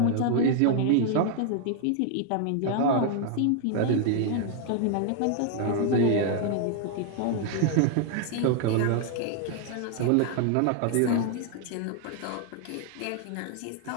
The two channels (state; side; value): different; both; correlation 0.00